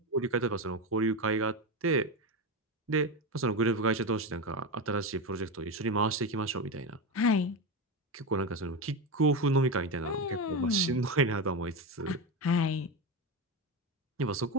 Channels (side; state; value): both; normal; correlation 0.16